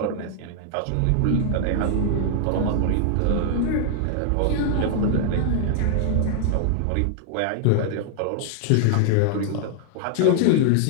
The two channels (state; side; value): different; both; correlation -0.01